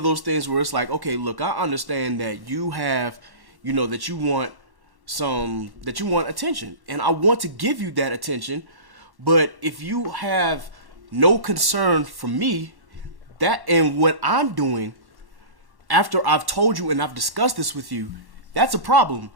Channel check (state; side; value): late; left; 1.1 ms